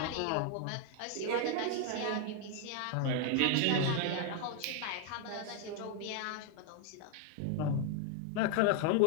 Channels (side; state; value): both; different; correlation 0.00